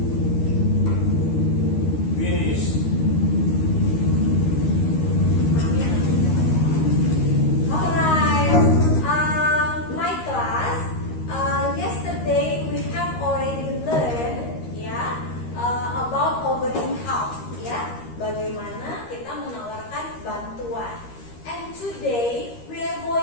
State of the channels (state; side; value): late; right; 13 ms